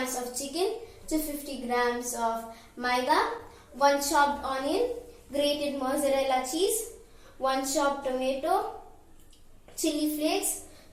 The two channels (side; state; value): both; identical; correlation 1.00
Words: of chicken, 250 grams of maida, 1 chopped onion, grated mozzarella cheese, 1 chopped tomato, chili flakes,